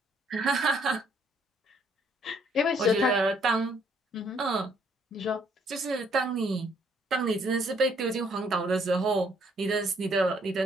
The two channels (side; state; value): both; normal; correlation 0.66